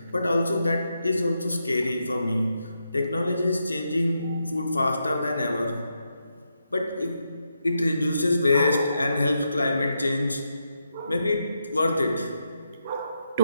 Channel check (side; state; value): both; inverted; correlation -0.83